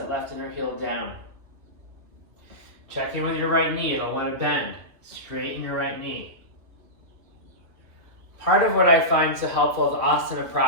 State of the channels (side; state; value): left; late; 2.7 ms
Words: left inner heel down. Check in with your right knee. I don't want to bend. Straighten your right knee. Part of what I find so helpful with asana